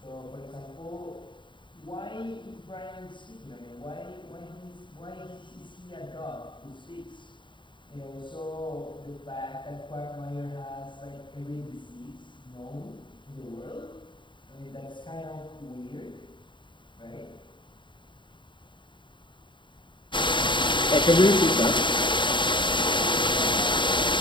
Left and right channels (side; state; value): right; late; 0.23 ms